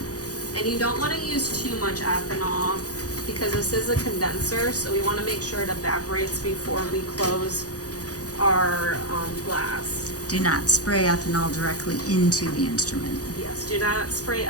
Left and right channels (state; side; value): late; right; 0.67 ms